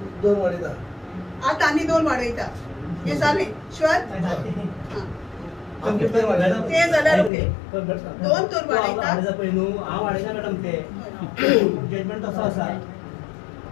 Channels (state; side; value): drops out; right; at 7.3 s